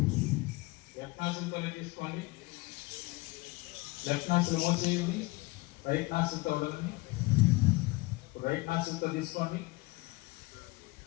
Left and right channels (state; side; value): quieter; right; 23.1 dB